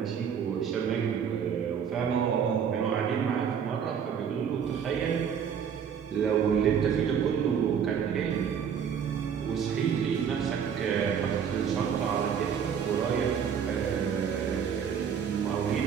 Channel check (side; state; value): left; quieter; 7.6 dB